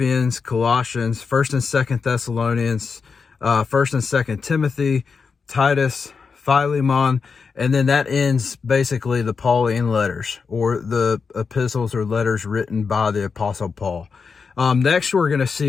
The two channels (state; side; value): quieter; right; 5.3 dB